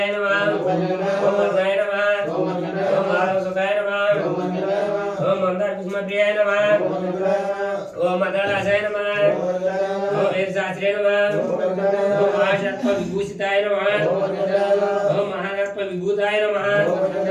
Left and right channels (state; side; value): identical; both; correlation 1.00